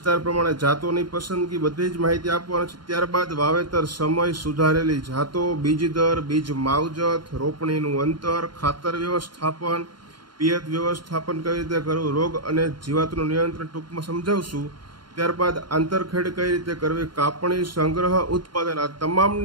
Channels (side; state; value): left; late; 0.72 ms